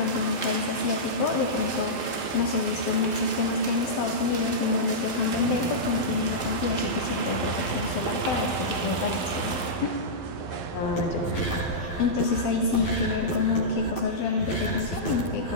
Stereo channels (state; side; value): late; right; 12 ms